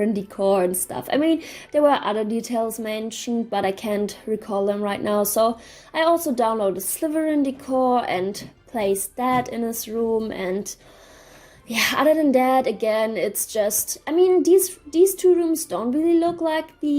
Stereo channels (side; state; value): both; identical; correlation 1.00